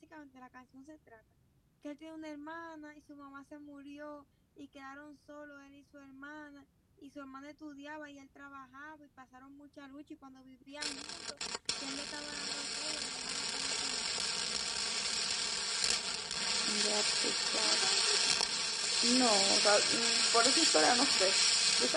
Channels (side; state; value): both; identical; correlation 1.00